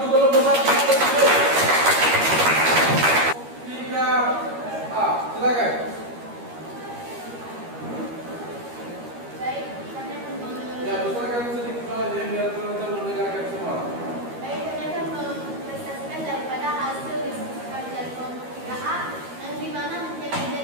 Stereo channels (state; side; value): late; left; 13 ms